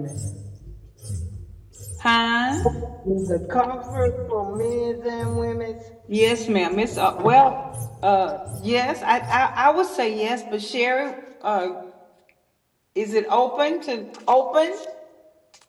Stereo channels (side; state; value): both; identical; correlation 1.00